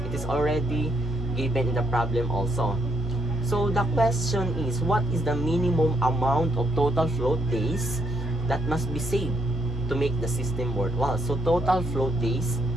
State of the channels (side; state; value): both; normal; correlation 0.75